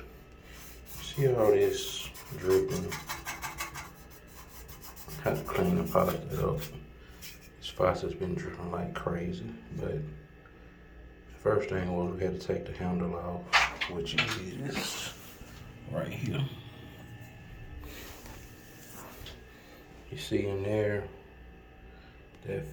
see all this dripping? I have to clean the faucet up. This faucet's been dripping like crazy, but the first thing was we had to take the handle off, which is right here. You see in there, that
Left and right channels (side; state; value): both; identical; correlation 1.00